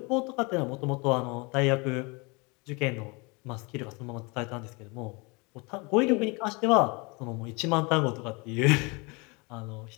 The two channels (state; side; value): quieter; right; 28.5 dB